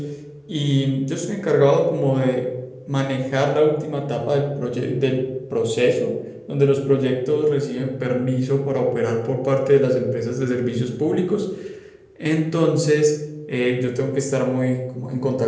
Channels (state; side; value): identical; both; correlation 1.00